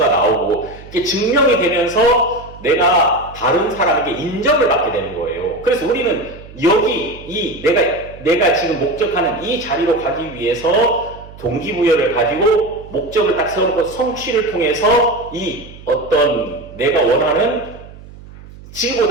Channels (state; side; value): noise; right; hum, 18 dB below the sound